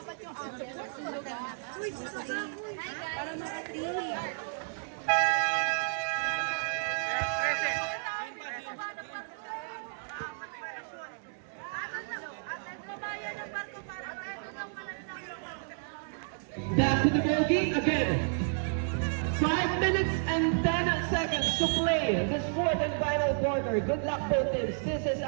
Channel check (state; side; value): silent; left; digital silence